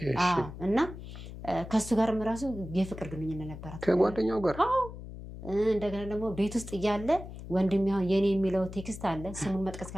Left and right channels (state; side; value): noise; left; hum, 12 dB below the sound